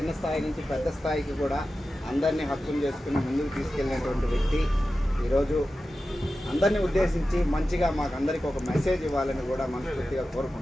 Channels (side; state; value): both; normal; correlation 0.93